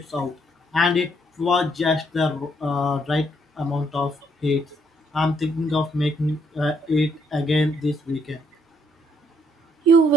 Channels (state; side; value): normal; both; correlation 0.70